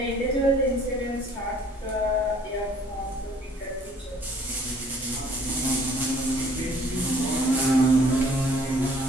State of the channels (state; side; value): normal; both; correlation 0.57